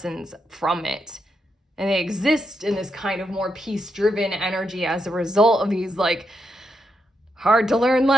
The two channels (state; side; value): normal; both; correlation 0.82